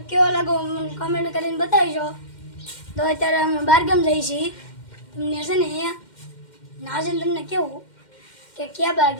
કેવો લાગો મને કમેન્ટ કરીને બતાવજો. તો અત્યારે અમે બારગામ જઈએ છીએ. તમને છે ને નાજન તમને કેવું કે ક્યાં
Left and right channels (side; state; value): right; late; 2.1 ms